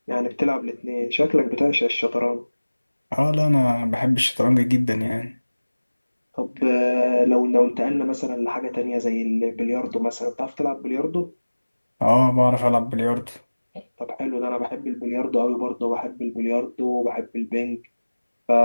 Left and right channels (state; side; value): inverted; both; correlation -1.00